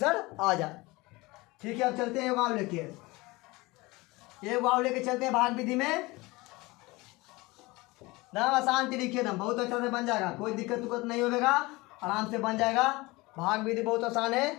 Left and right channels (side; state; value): right; quieter; 22.5 dB